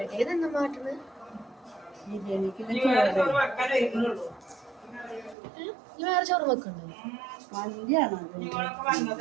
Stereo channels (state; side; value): drops out; left; at 5.4 s